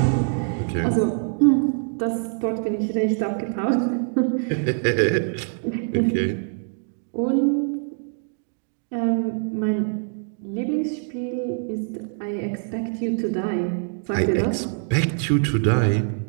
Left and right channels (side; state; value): left; silent; 56 dB below the other